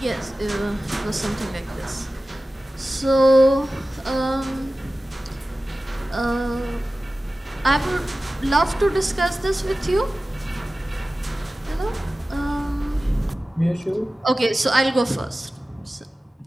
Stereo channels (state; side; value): normal; both; correlation 0.96